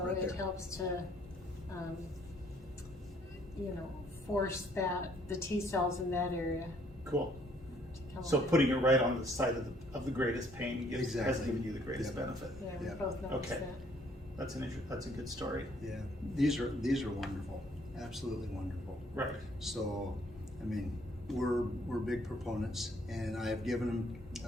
it there. helps to, you know, force the T cells in that area cool. to come So alive. putting it right on the side of the greatest pain has Exactly. given you the greatest Yep. benefit. Yeah, we Yeah. both noticed Okay. that. That's that's a good story. Yeah, these are wonderful, absolutely wonderful. Right. So, I mean, we're big proponents, and I have given them.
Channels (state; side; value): normal; both; correlation 0.64